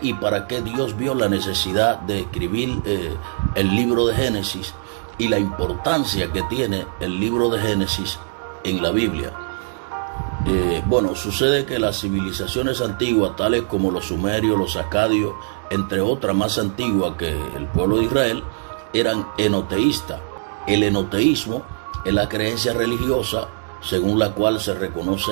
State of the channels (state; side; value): silent; left; digital silence